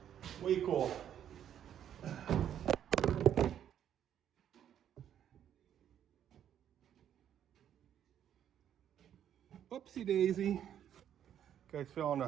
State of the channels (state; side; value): quieter; left; 9.9 dB